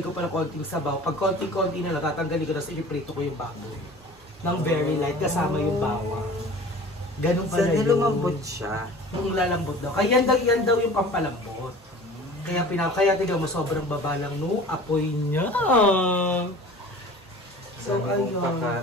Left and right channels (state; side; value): normal; both; correlation 0.43